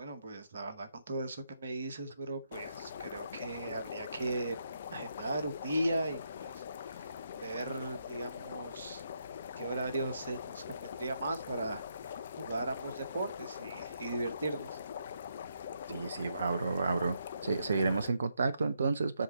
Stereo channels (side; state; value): both; inverted; correlation -0.78